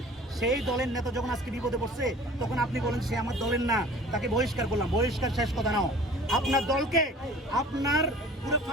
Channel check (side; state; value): both; normal; correlation 0.46